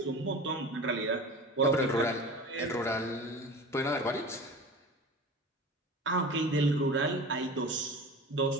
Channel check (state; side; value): normal; both; correlation 0.35